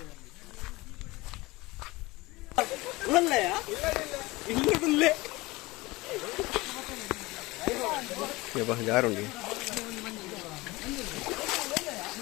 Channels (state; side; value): quieter; right; 21.6 dB